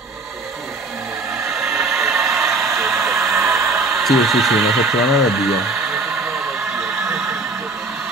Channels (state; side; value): quieter; left; 3.1 dB